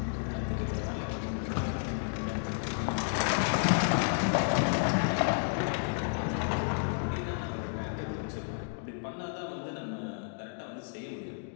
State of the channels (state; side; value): silent; right; digital silence